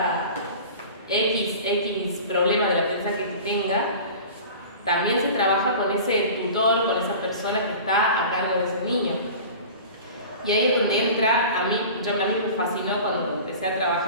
X problema del aprendizaje que tenga. También se trabaja con ese tutor, con esa persona que está a cargo de ese niño. Y ahí es donde entra, a mí me fascinó cuando empecé a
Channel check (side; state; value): both; inverted; correlation -0.38